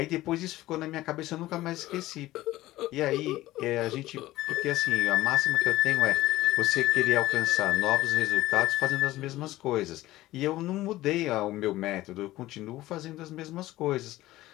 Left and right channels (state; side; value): quieter; right; 16.5 dB